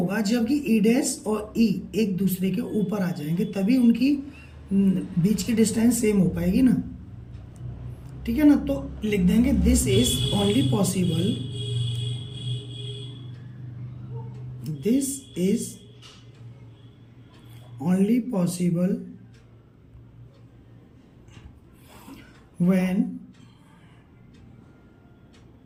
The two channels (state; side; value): identical; both; correlation 1.00